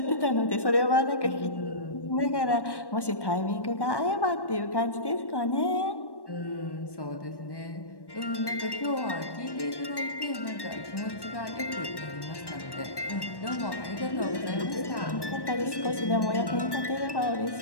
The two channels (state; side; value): late; right; 1.1 ms